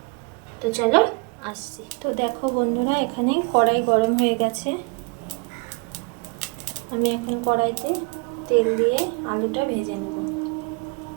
তো চলো আসছি। তো দেখো বন্ধুরা, এখানে কড়াই গরম হয়ে গেছে। আমি এখন কড়াইতে তেল দিয়ে আলুটা ভেজে নেব।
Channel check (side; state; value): left; quieter; 32.1 dB